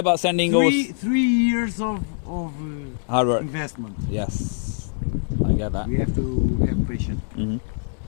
sending those? 3 years of Hard work. investment. Yes. I get that. We have to have patience. Mm-hmm.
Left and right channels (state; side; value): silent; right; 63 dB below the other